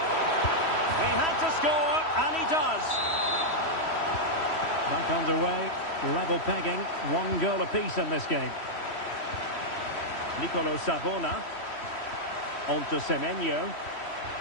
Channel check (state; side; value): late; right; 3.1 ms